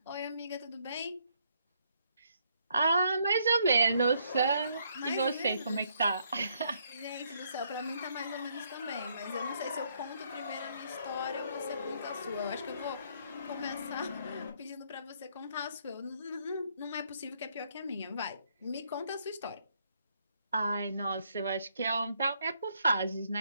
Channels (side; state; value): both; inverted; correlation -0.71